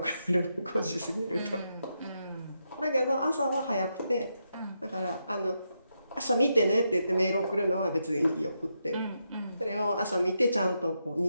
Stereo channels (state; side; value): inverted; both; correlation -0.83